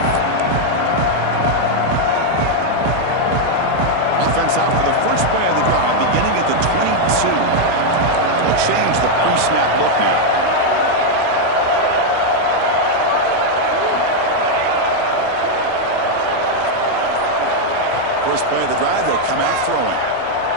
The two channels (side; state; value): both; different; correlation 0.00